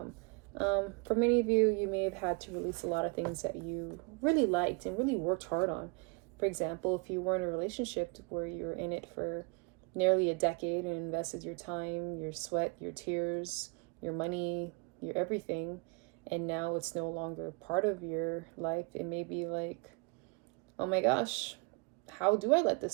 For many of you, you may have had to release a lot of things that you really liked and really worked hard on. For example, if you were in a relationship where you're in it for nearly a decade and invested your time, your sweat, your tears, your money, your everything, and now it's no longer part of your life, it may be like, oh my gosh, how do I let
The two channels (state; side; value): quieter; left; 31.0 dB